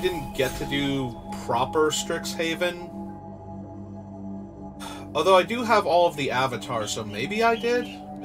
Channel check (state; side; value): identical; both; correlation 1.00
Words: get to do proper Strixhaven. Although I do have all of the avatars, so maybe I did?